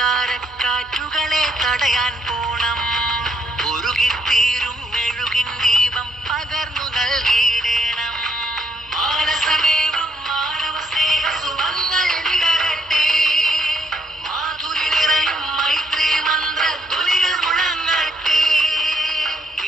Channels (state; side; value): normal; both; correlation 0.71